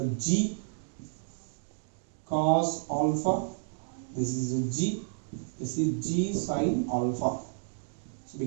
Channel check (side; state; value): left; silent; digital silence